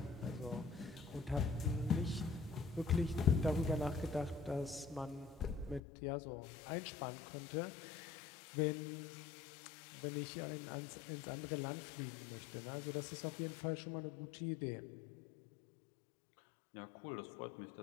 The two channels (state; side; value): drops out; right; at 5.8 s